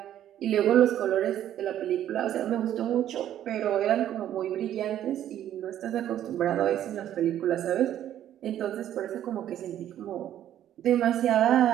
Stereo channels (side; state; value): left; quieter; 11.4 dB